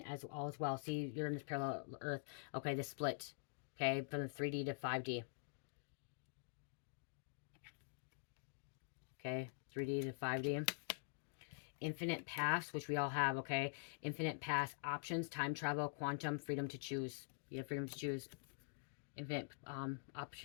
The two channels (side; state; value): right; silent; digital silence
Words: as well. See, you're in this parallel Earth. Okay, the split. Okay, from the 3D to 5D. Okay, 3D to 5D. Infinite pass, which we all have, okay? Infinite pass, options, time travel, quantum, freedom to choose. You have freedom to choose. Infinite